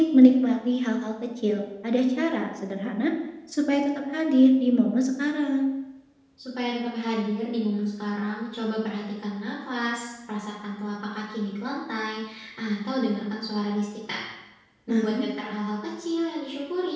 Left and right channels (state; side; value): identical; both; correlation 1.00